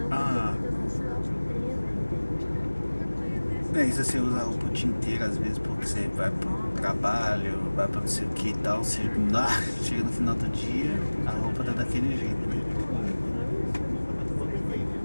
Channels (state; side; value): inverted; both; correlation -1.00